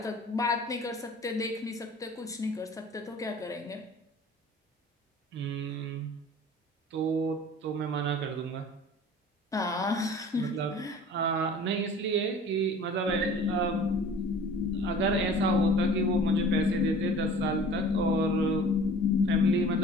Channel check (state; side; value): normal; both; correlation 0.45